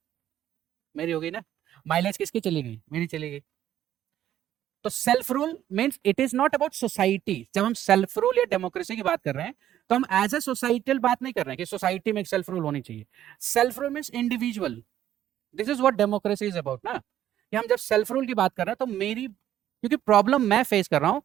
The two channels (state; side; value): quieter; left; 11.8 dB